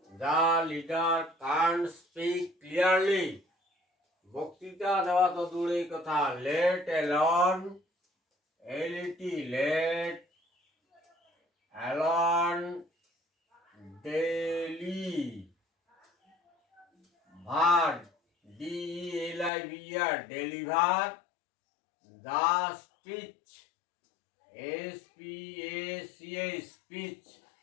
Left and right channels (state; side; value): drops out; right; at 19.5 s